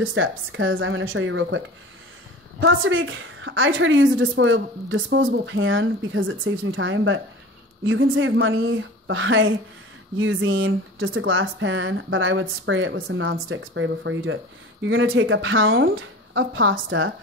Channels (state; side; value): normal; both; correlation 0.38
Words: steps because I'm gonna show you real quick. Pasta bake, I try to use a disposable pan because it saves me time, but you can save money by using just a glass pan, but I would spray it with some nonstick spray before you do it. You're gonna take a pound of pasta